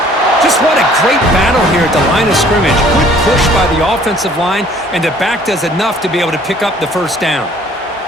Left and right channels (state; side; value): normal; both; correlation 0.56